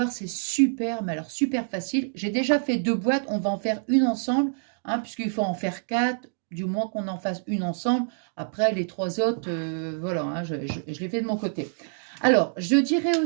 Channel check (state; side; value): silent; left; digital silence